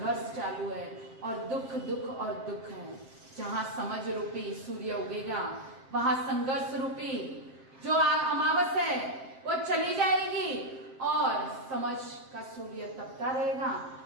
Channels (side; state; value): left; late; 7.6 ms